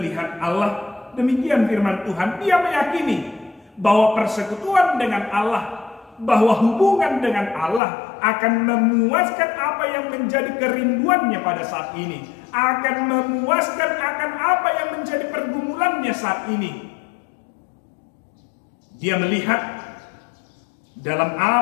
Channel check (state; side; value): drops out; right; at 7.8 s